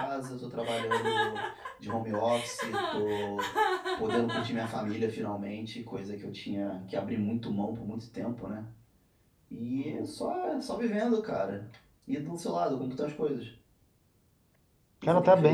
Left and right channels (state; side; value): identical; both; correlation 1.00